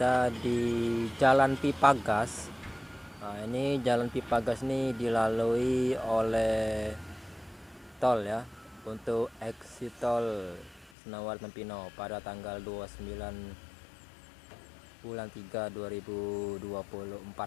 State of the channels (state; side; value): drops out; right; at 10.9 s